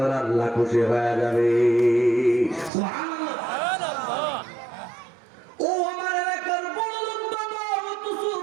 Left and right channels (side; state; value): left; drops out; at 2.7 s